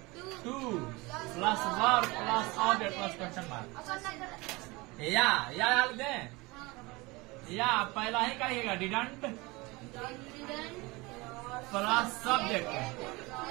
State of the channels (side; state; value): left; quieter; 23.8 dB